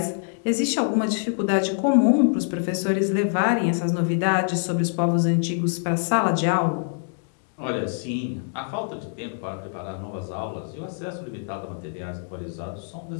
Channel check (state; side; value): silent; right; digital silence